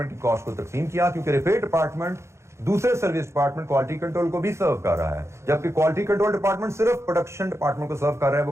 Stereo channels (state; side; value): late; left; 0.13 ms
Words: की कॉस्ट को तकसीम किया, क्योंकि रिपेयर डिपार्टमेंट दूसरे सर्विस डिपार्टमेंट क्वालिटी कंट्रोल को भी सर्व कर रहा है, जबकि क्वालिटी कंट्रोल डिपार्टमेंट सिर्फ प्रोडक्शन डिपार्टमेंट को सर्व कर रहा है,